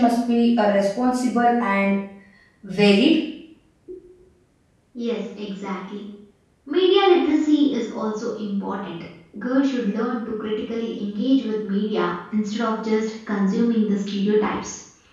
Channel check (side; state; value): both; identical; correlation 1.00